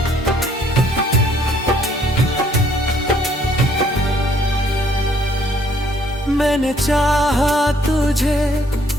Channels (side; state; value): both; normal; correlation 0.64